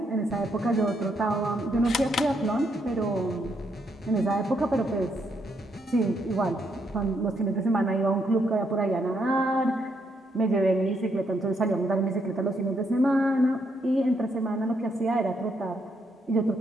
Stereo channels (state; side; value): normal; both; correlation 0.76